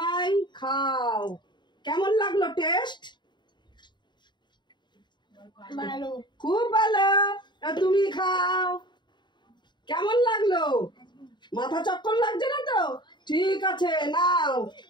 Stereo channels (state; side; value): late; right; 0.22 ms